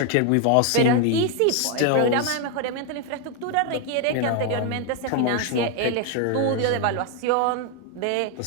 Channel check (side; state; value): both; different; correlation 0.01